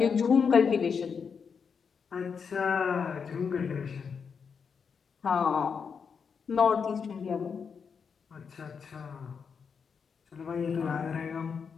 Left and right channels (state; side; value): quieter; right; 6.2 dB